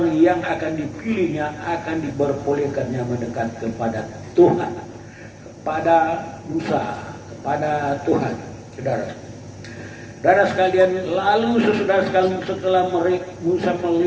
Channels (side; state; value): both; identical; correlation 1.00